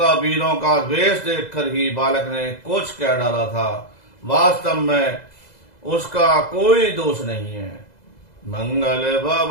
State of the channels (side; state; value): right; late; 2.0 ms